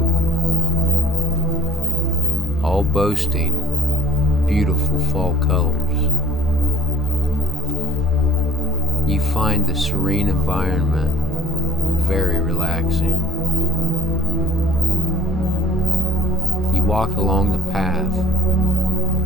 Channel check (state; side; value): normal; both; correlation 0.55